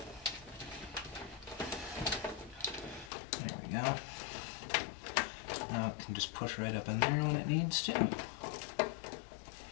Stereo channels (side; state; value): right; drops out; at 3.1 s